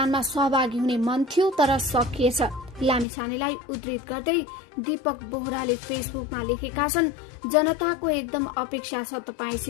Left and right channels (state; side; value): drops out; right; at 3.1 s